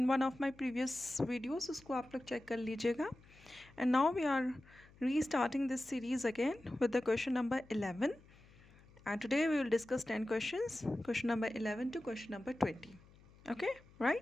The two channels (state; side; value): noise; left; hum, 25 dB below the sound